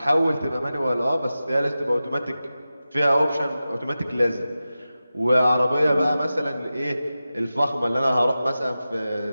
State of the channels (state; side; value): inverted; both; correlation -0.94